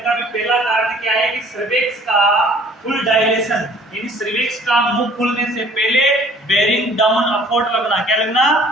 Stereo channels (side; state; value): both; normal; correlation 0.54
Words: भी पहला कारण क्या है कि सर्विक्स का फुल डायलेशन, यानी सर्विक्स का मुंह खुलने से पहले बेरिंग डाउन एफोर्ट लगना। क्या लगना?